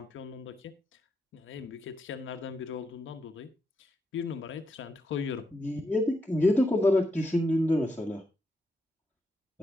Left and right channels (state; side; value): normal; both; correlation 0.83